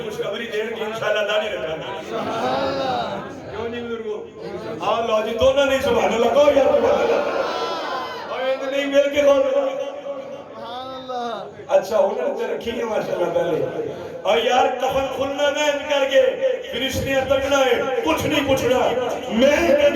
خوشخبری دین کہ انشاءاللہ داڑھی رکھاں سبحان اللہ کیوں نہیں بزرگو آؤ لو جی دونوں نہیں سبحان اللہ کہو یا سبحان اللہ اور یہ نہیں مل کے کہو اچھا انہوں نے رکھی ہے ماشاءاللہ پہلے اور یار کفن کھلنا نہ کر کے فرشتیاں تکنا ہے کچھ نہیں پوچھنا میں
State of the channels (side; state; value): both; identical; correlation 1.00